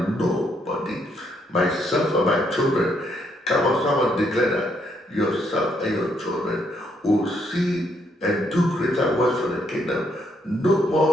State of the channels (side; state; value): both; normal; correlation 0.73